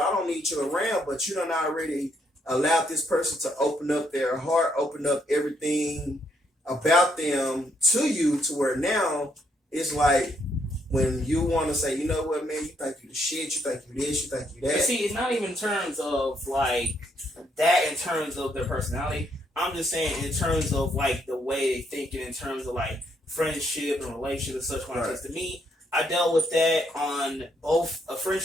don't need you around. But you done already allowed this person to open up their heart, open up everything about them to you, to where now it's like when you want to say, you know what, man, you think you the shit, you think you this, you think you that. But see, it's not even in terms of that, in terms of their personality. I'm just saying in terms of the way they think, and in terms of friendship and relationship and such. Because to me, I dealt with that on both a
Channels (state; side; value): normal; both; correlation 0.73